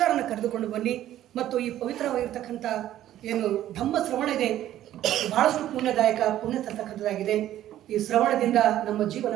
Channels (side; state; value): left; quieter; 12.7 dB